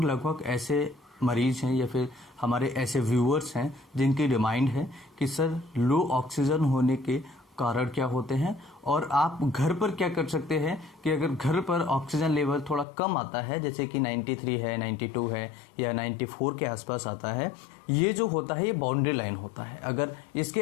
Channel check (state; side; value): drops out; right; at 12.9 s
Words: ऐसे मरीज हैं या फिर हमारे ऐसे व्यूअर्स हैं जिनकी डिमांड है कि सर लो ऑक्सीजन होने के कारण क्या होते हैं और आप घर पर क्या कर सकते हैं कि अगर घर पर ऑक्सीजन लेवल थोड़ा कम आता है, जैसे कि 93 है, 92 है या 94 के आसपास आता है, ये जो होता है ये बाउंड्री लाइन होता है। अगर इसके